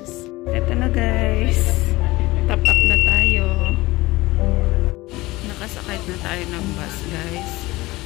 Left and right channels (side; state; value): right; quieter; 20.0 dB